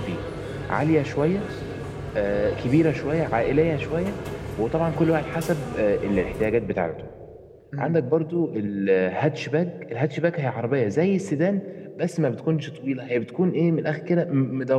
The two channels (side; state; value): both; identical; correlation 1.00